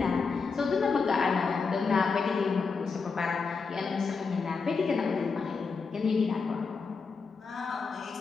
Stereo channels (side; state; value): right; quieter; 4.9 dB